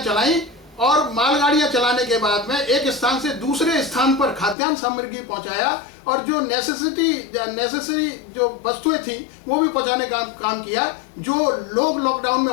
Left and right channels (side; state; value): right; drops out; at 4.5 s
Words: चलाई। और मालगाड़ियां चलाने के बाद में एक स्थान से दूसरे स्थान पर खाद्यान्न सामग्री पहुंचाया और जो नेसेसरी जो वस्तुएं थी वो भी पहुंचाने का काम किया। जो लोग लॉकडाउन में